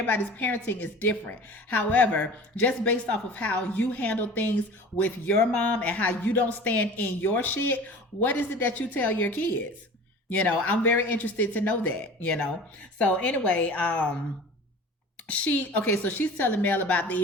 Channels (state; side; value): normal; both; correlation 0.40